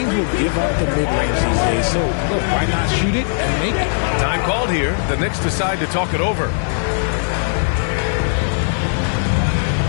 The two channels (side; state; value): right; silent; digital silence